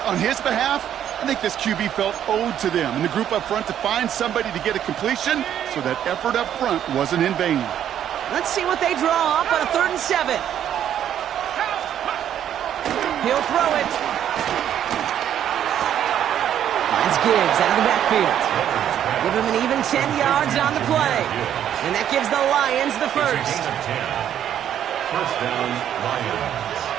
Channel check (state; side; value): quieter; left; 10.2 dB